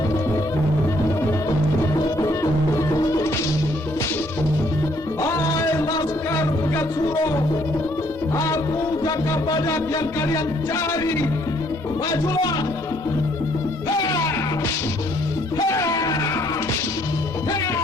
Hai Laskar Pegat Suro, aku Jaka Badak yang kalian cari. Majulah!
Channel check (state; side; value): normal; both; correlation 0.66